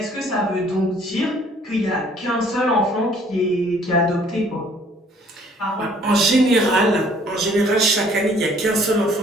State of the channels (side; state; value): both; normal; correlation 0.58